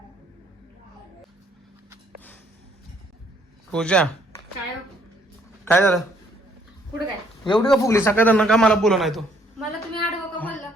पूजा काय काय झालं पुढे काय एवढी का फुगली सकाळ का मला बोलू नाही तू मला तुम्ही आडवं का बोलला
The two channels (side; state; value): both; normal; correlation 0.66